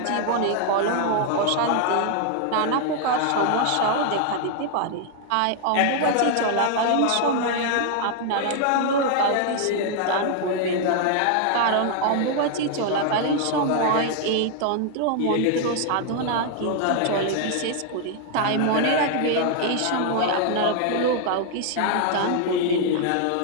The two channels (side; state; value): both; different; correlation 0.00